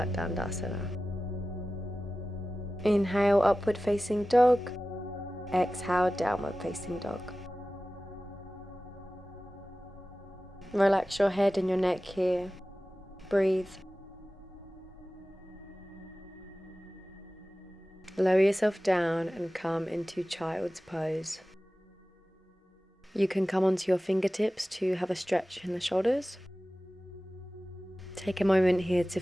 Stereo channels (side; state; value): both; normal; correlation 0.96